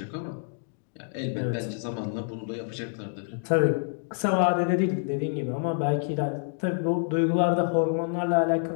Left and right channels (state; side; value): silent; right; digital silence